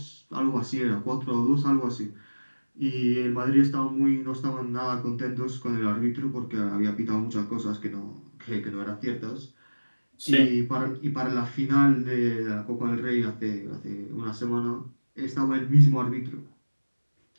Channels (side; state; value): both; inverted; correlation -1.00